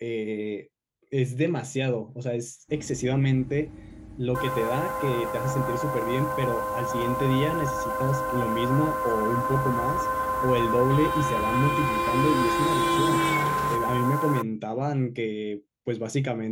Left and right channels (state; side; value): identical; both; correlation 1.00